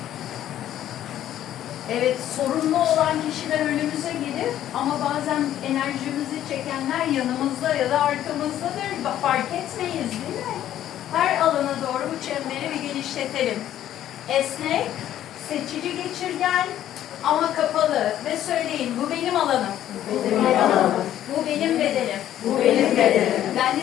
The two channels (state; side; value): quieter; right; 11.9 dB